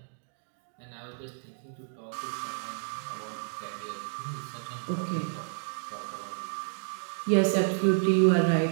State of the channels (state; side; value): silent; left; digital silence